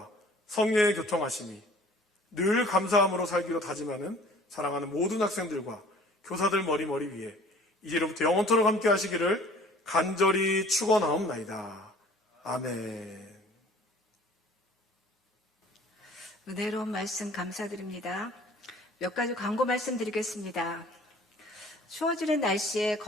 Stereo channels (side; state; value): both; normal; correlation 0.51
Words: 성령의 교통하심이 늘 감사함으로 살기로 다짐하는 사랑하는 모든 학생들과 교사들 머리 위에 이제로부터 영원토록 함께 하시기를 간절히 축원하옵나이다. 아멘. 은혜로운 말씀 감사드립니다. 몇 가지 광고 말씀드리겠습니다. 추워지는 날씨에